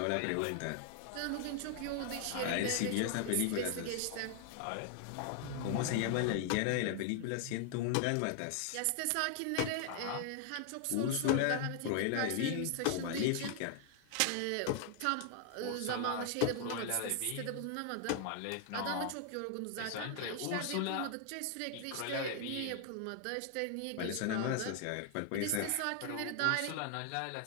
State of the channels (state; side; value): different; both; correlation 0.00